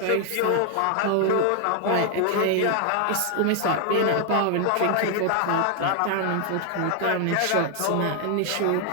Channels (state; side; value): different; both; correlation 0.00